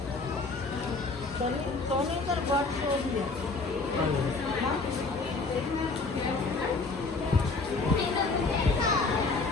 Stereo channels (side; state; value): right; quieter; 3.8 dB